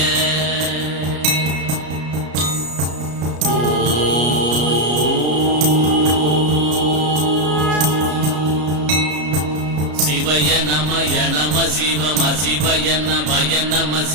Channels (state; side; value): late; left; 33 ms